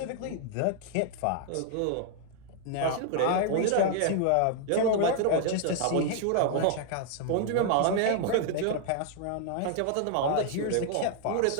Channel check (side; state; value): both; different; correlation 0.00